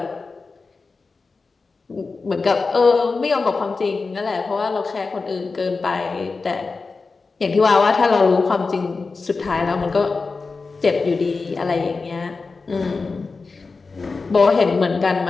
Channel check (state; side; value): quieter; right; 4.2 dB